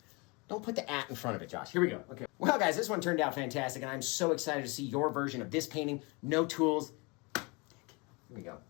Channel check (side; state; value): right; quieter; 28.6 dB